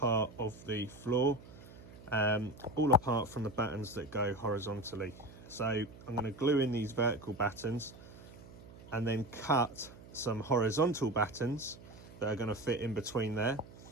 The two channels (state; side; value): noise; right; hum, 18 dB below the sound